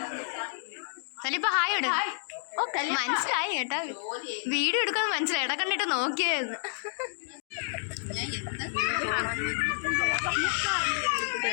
ഹായ് ഇട്. മനസ്സിലായി കേട്ടാ, വീഡിയോ എടുക്കാന്ന് മനസ്സിലായി. ഇട കണ്ടിട്ട് നോക്കിയായിരുന്നു.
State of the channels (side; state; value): right; silent; digital silence